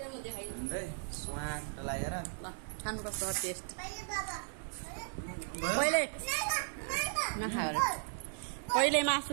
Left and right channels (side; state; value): left; silent; digital silence